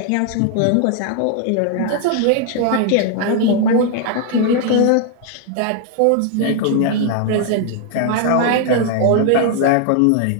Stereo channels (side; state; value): both; different; correlation 0.00